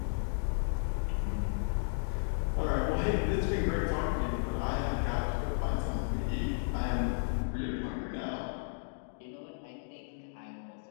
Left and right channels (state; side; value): silent; right; digital silence